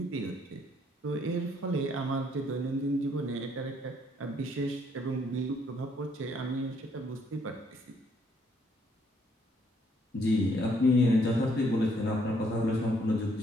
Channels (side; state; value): both; normal; correlation 0.68